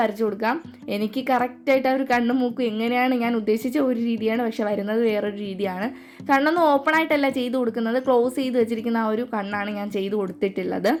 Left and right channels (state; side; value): identical; both; correlation 1.00